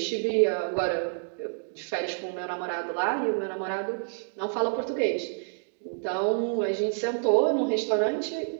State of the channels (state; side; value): silent; left; digital silence